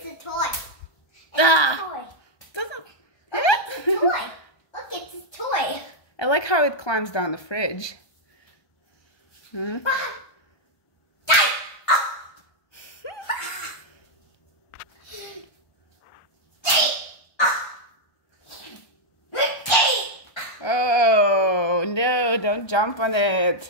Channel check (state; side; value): late; right; 1.3 ms